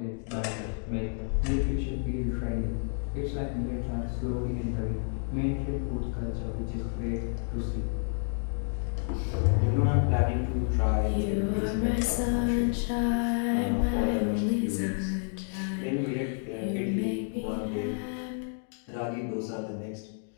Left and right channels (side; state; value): right; silent; 58 dB below the other